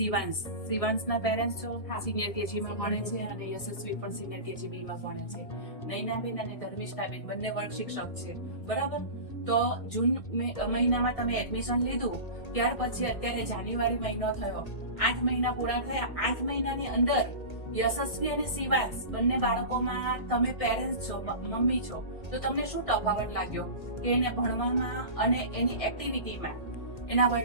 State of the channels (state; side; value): late; right; 1.6 ms